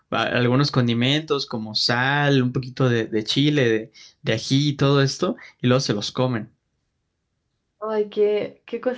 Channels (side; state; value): both; identical; correlation 1.00